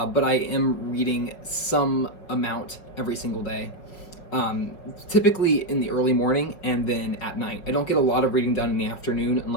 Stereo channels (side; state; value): right; late; 5.5 ms